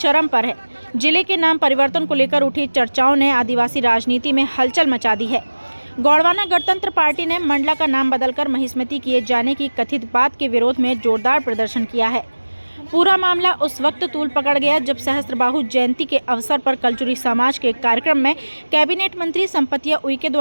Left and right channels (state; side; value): inverted; both; correlation -1.00